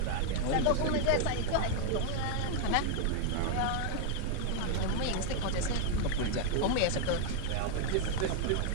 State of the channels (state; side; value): different; both; correlation 0.00